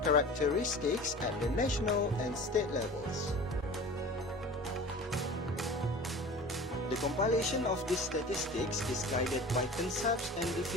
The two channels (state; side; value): normal; both; correlation 0.39